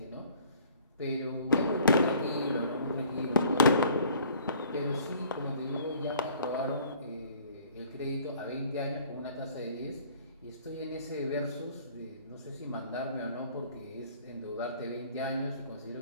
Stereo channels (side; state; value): both; inverted; correlation -0.53